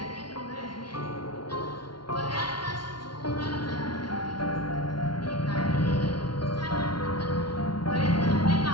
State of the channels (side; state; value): right; late; 0.72 ms